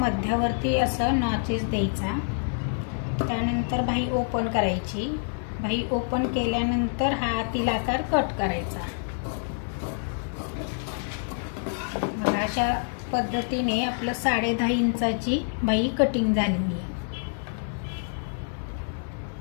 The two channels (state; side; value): silent; right; 60 dB below the other